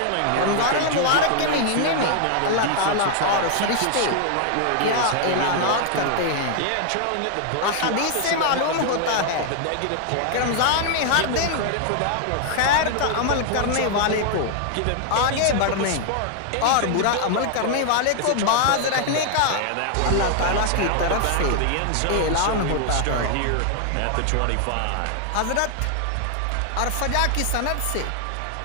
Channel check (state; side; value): different; both; correlation 0.00